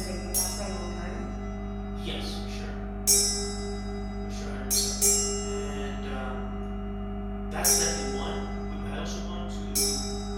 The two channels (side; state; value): both; identical; correlation 1.00